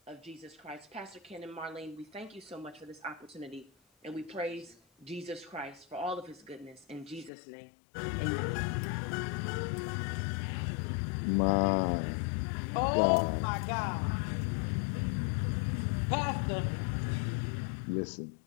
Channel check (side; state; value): right; drops out; at 7.3 s